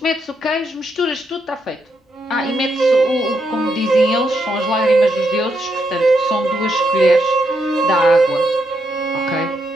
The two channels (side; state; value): both; normal; correlation 0.79